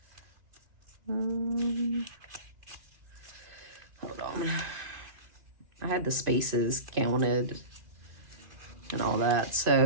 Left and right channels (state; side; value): late; left; 2.5 ms